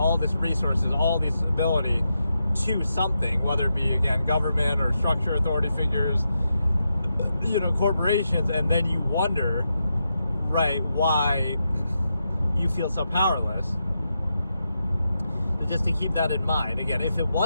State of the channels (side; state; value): both; inverted; correlation -0.86